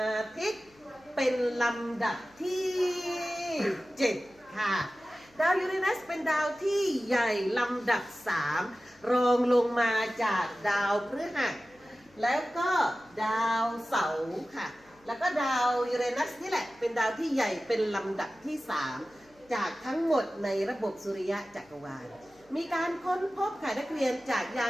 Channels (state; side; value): noise; left; hum, 30 dB below the sound